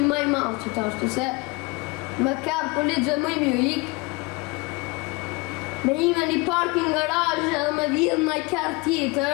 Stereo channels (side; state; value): right; quieter; 26.1 dB